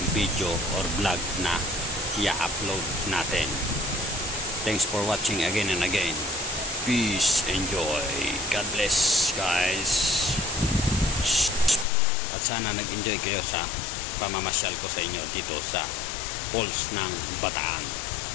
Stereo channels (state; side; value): drops out; right; at 11.9 s